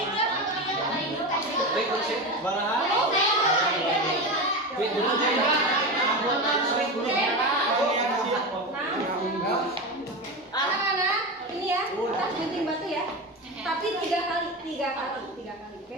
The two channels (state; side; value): normal; both; correlation 0.21